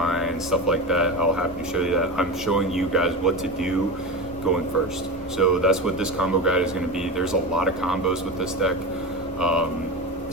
stuff like that, I'll happy to show you that. I'm showing you guys what to do going first. So that's what this combo guide is going to be. There's a lot of combos with this deck.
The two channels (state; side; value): normal; both; correlation 0.24